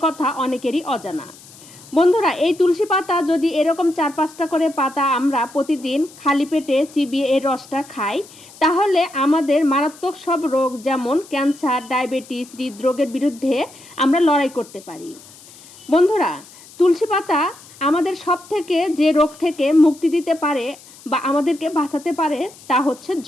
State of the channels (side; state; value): left; noise; hiss, 22 dB below the sound